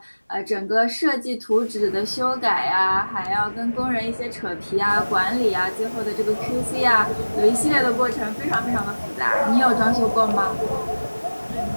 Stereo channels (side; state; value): both; inverted; correlation -1.00